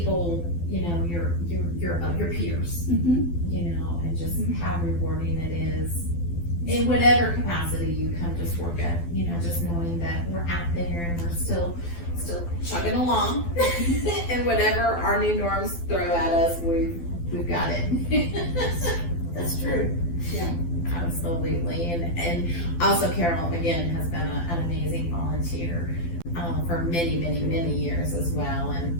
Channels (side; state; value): right; late; 12 ms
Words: your peers, and just how rewarding it is in whatever capacity you come to SWORCA, just knowing that we're out there and we're still chugging along and whatever our new norms throw at us, we've got it. That's true. Yeah. Absolutely. And also Carol, again, has been an amazing volunteer for many, many, many years as well.